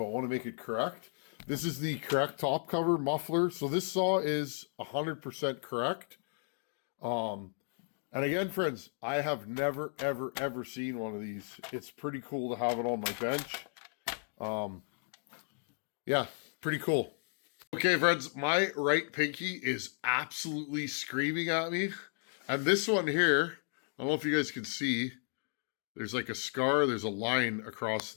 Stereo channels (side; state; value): right; silent; 55 dB below the other